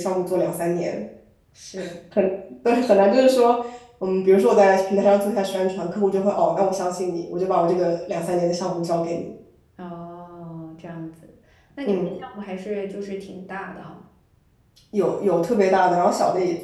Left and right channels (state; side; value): identical; both; correlation 1.00